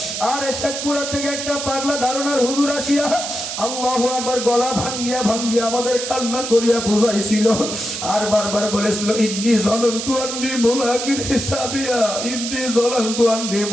আরে শেখপুরা থেকে একটা পাগলা ধারণার হুজুর আসিয়া আল্লাহু আকবার গলা ভাঙ্গিয়া ভাঙ্গিয়া আমাদের কান্না করিয়া বুঝাইছিল আর বারবার বলেছিল ইন্নী সনান্তু আন্নী মুলাকিন হিসাবিয়া, ইন্নী সনান্তু আন্নী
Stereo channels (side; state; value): right; noise; hiss, 5 dB below the sound